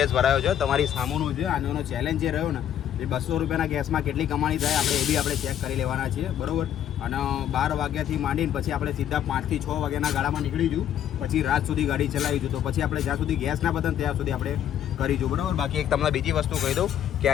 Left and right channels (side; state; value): right; quieter; 10.4 dB